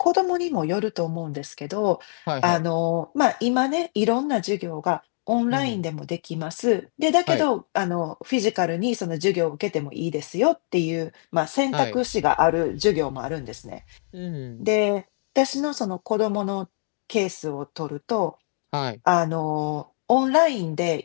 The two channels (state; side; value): silent; right; 62 dB below the other